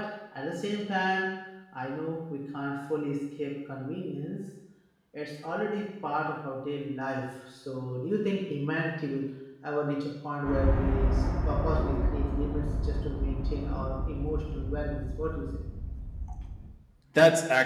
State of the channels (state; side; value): identical; both; correlation 1.00